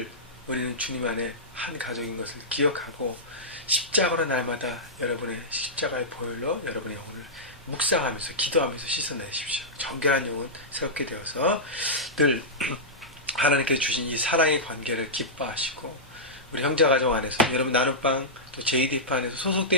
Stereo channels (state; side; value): normal; both; correlation -0.12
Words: 우리는 주님 안에 한 가족인 것을 기억하고 십자가로 날마다 여러분의 십자가의 보혈로 여러분의 영혼을 묵상하면서 기도하면서 씻어내십시오. 정결한 영혼 새롭게 되어서 늘 하나님께서 주신 이 사랑의 관계를 기뻐하시고 우리 형제가정 안에서 여러분 나눔방 또 JDF 안에서